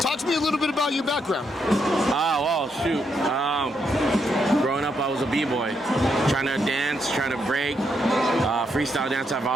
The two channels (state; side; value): normal; both; correlation 0.78